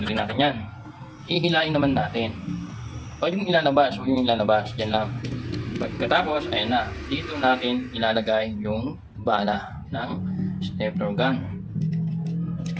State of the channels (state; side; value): identical; both; correlation 1.00